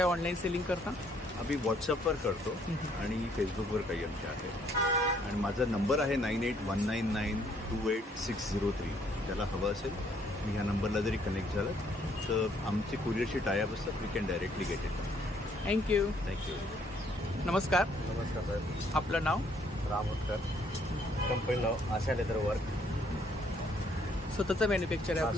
ऑनलाईन सेलिंग करता? आम्ही व्हॉट्सअपवर करतो आणि फेसबुकवर काही आमचे आहे. आणि माझा नंबर आहे 9819928603. त्याला हवं असेल मी ह्या नंबरला जरी कनेक्ट झालं तर आमची कुरिअरशी टायअप असतात. We can directly get it. Thank you. नमस्कार. नमस्कार साहेब. आपलं नाव? रामोदकर. कंपनी नाव आशा लेदर वर्क. स्वतःचं मॅन्युफॅक्चर आहे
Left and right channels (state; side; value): normal; both; correlation 0.66